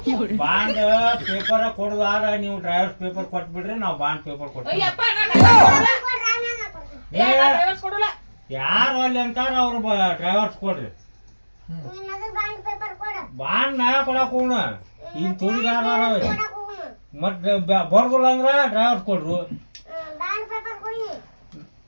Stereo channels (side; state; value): both; inverted; correlation -1.00